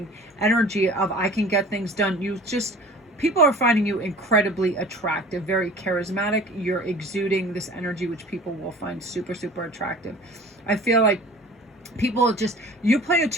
energy of, I can get things done. People are finding you incredibly attractive, very charismatic. You're exuding this energy, which people will find super, super attractive. I feel like people you play a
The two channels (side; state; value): both; normal; correlation 0.43